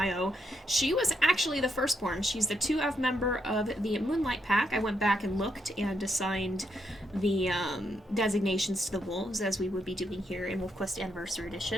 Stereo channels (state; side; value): normal; both; correlation 0.78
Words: she was actually the firstborn. She's the 2F member of the Moonlight pack. I went back and looked and assigned the designations to the wolves, as we would be doing here in WolfQuest Anniversary